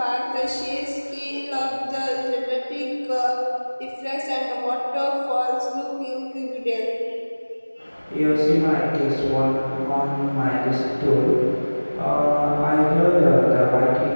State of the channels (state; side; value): inverted; both; correlation -1.00